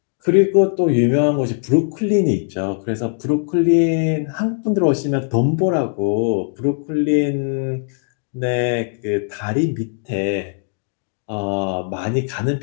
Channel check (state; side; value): silent; right; digital silence